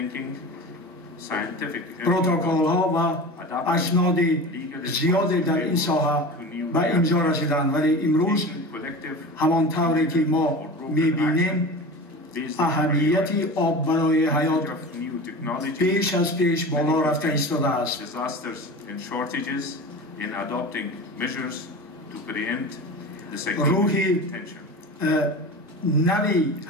scientific پروتکل ها و اسناد زیادی در این ساحه به امضا رسیدند، ولی امروز همان طوری که ما میبینیم اهمیت آب برای حیات پیش از پیش بالا رفته ایستاده است. روح نوی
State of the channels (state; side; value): normal; both; correlation 0.32